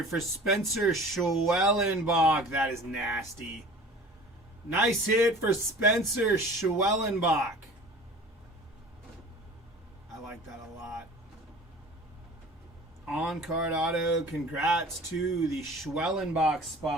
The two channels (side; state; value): both; normal; correlation 0.43